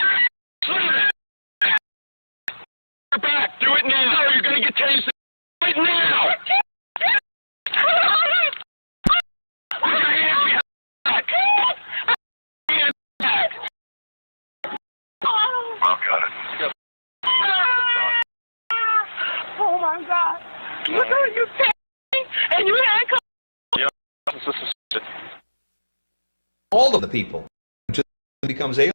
Back. Do it now. You're going to get tased right now. Put your hands behind back. Hands back. Oh, got it. Oh my God! Look at you take and you handcuff. Yeah, all of the people until it becomes alien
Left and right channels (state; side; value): inverted; both; correlation -1.00